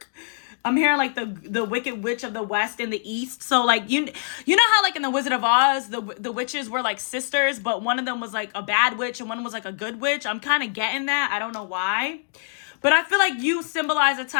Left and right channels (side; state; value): right; silent; digital silence